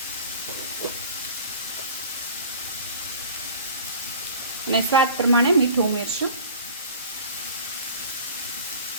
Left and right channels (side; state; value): both; inverted; correlation -0.42